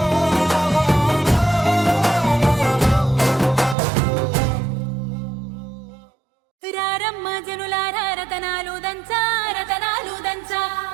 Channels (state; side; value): drops out; left; at 3.8 s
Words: రారమ్మ జనులారా రతనాలు దంచా రతనాలు దంచా